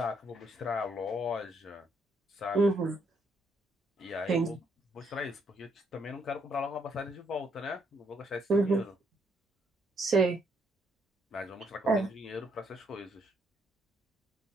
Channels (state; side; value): normal; both; correlation 0.72